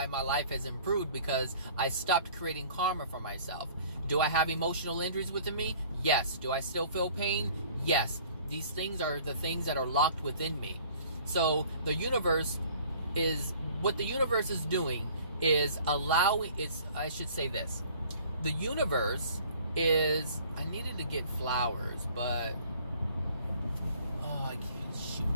my life has improved, because I stopped creating karma for myself. Do I have emotional injuries within me? Yes. Do I still feel pain? Yes. These things are the things that are locked within me. So the universe is, what the universe is doing is allowing, I should say this. The universe is, I needed to get flowers, but, I can't, shoot.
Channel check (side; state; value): both; inverted; correlation -0.52